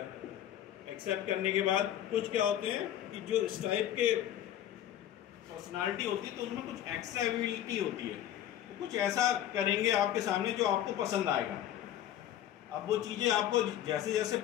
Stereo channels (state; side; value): quieter; right; 11.7 dB